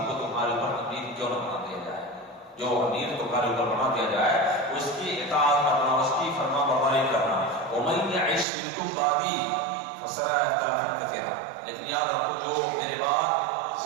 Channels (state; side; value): drops out; left; at 8.5 s